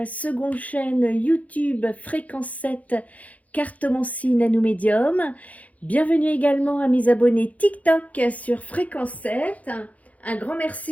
seconde chaîne YouTube Fréquence 7 Cartomancie Nano Médium. Bienvenue également à mes abonnés TikTok sur Fréquence 7. Un grand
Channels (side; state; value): right; late; 0.070 ms